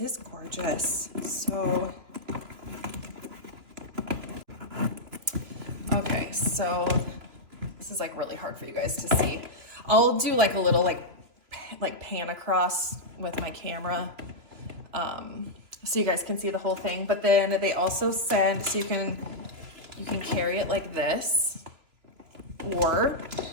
gorgeous. So, okay, so this is like really hard for you guys to see. I'll do like a little like pan across with my camera. So you guys can see the whole thing, but then they also send, so you can carry it like this. or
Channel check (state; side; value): late; left; 2.9 ms